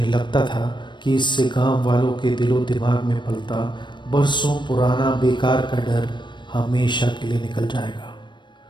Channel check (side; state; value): right; late; 0.22 ms